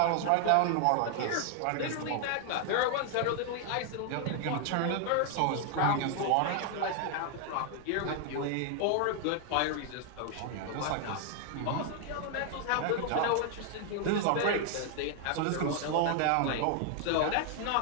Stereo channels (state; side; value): different; both; correlation 0.00